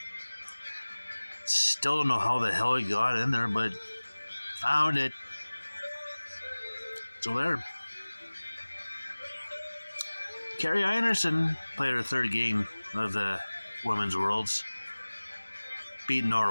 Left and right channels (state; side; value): inverted; both; correlation -1.00